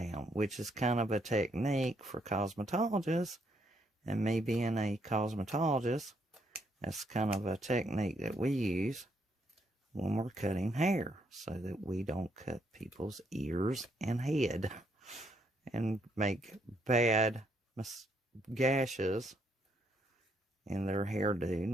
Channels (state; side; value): normal; both; correlation 0.73